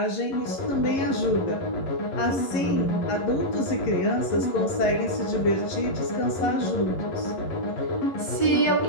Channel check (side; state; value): right; late; 11 ms